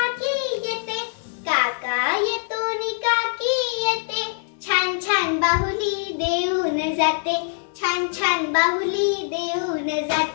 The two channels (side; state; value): right; silent; digital silence